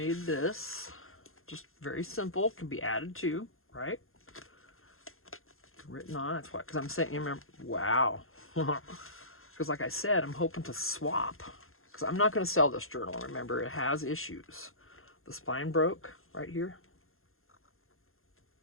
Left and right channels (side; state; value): right; late; 0.61 ms